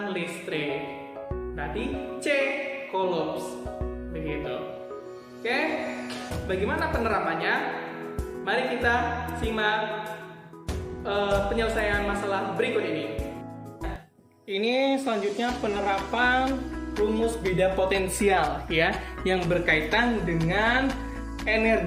listrik. Berarti C coulombs. Begitu. Oke. Bagaimana penerapannya? Mari kita simak penyelesaian masalah berikut ini. Ini selanjutnya penerapan rumus beda potensial ya, yang berkaitan dengan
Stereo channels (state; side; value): identical; both; correlation 1.00